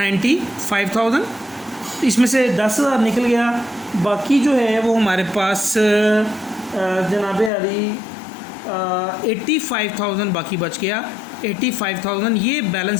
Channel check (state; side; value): drops out; right; at 7.5 s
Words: इसमें से 10,000 निकल गया, बाकी जो है वो हमारे पास जनाब अली 85,000 बाकी बच गया। 85,000 ये